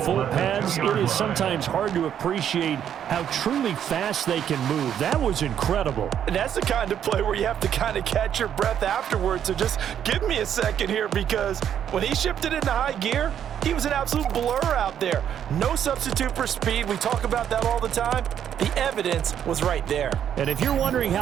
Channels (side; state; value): left; quieter; 9.4 dB